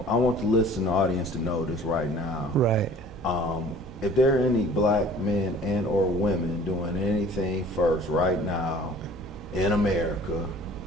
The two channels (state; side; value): normal; both; correlation 0.49